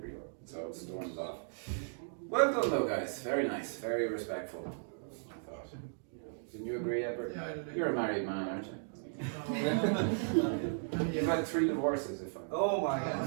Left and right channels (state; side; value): silent; left; digital silence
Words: So it storms off. Well done though, guys. Very nice, very respectful. I thought. Didn't you agree, Edward? Yeah, I do. You're a married man, aren't you? You've had 3 divorces, if I'm Oh my not God.